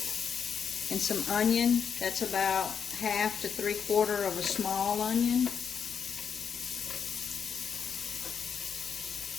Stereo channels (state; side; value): quieter; right; 7.0 dB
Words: some onion. That's about 1/2 to 3/4 of a small onion.